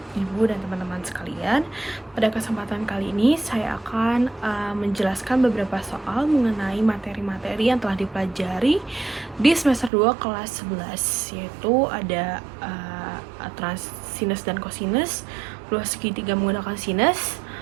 Ibu dan teman-teman sekalian. Pada kesempatan kali ini, saya akan menjelaskan beberapa soal mengenai materi-materi yang telah dipelajari di semester 2 kelas 11, yaitu ada aturan sinus dan kosinus, luas segitiga menggunakan sinus,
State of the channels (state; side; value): drops out; left; at 9.9 s